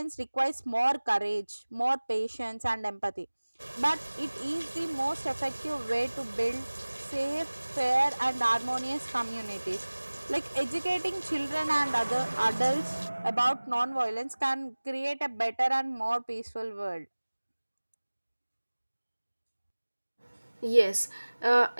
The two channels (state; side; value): inverted; both; correlation -1.00